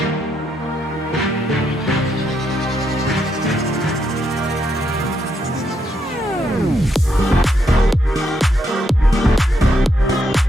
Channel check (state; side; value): normal; both; correlation 0.78